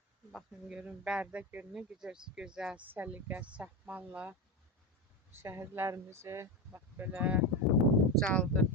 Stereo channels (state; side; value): normal; both; correlation 0.16